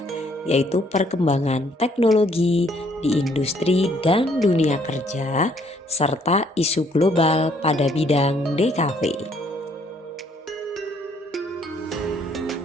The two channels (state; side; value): normal; both; correlation 0.65